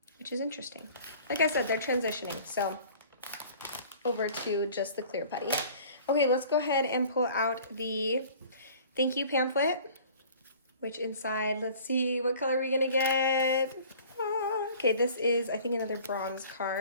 which is interesting. Like I said, they're transitioning, so over to just the clear putty. Okay, let's go ahead and pull out the thank you pamphlet, which inside, let's see, what color are we gonna get? Okay, this is, I think, another bronze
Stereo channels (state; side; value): inverted; both; correlation -0.48